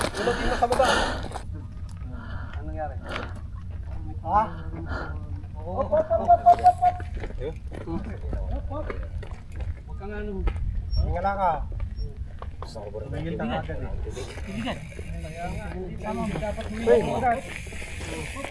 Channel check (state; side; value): identical; both; correlation 1.00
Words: mo sa baba. Anong nangyari? Ha? Op. Huwag kang ano. Tingala ka. Tingil na ka.